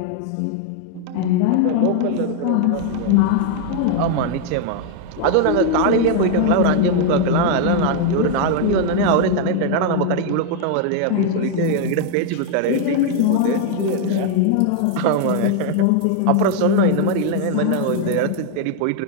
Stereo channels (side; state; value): both; different; correlation 0.00